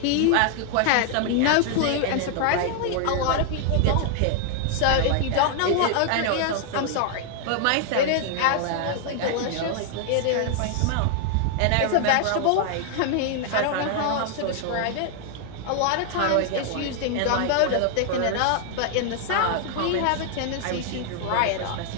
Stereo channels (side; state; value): both; different; correlation 0.00